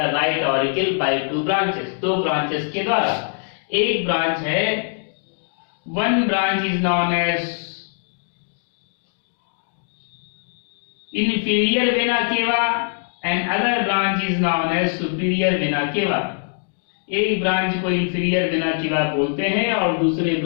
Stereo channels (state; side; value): silent; right; 63 dB below the other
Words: right auricle by two branches। दो ब्रांचेस के द्वारा। एक ब्रांच है, one branch is known as inferior vena cava and other branch is known as superior vena cava। एक branch को inferior vena cava बोलते हैं और दूसरे